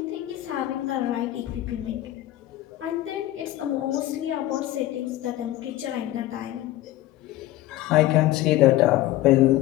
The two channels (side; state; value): right; quieter; 15.2 dB